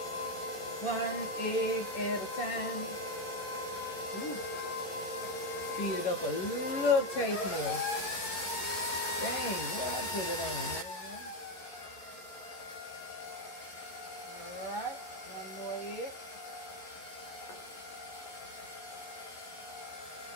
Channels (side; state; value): right; late; 11 ms